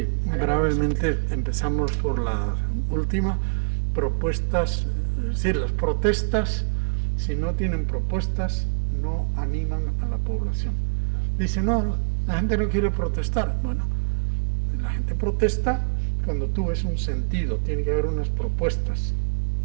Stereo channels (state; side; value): silent; left; 56 dB below the other